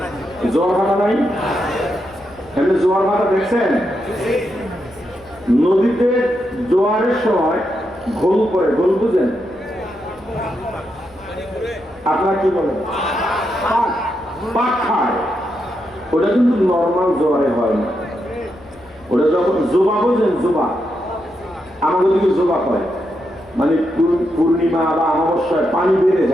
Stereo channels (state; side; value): normal; both; correlation 0.83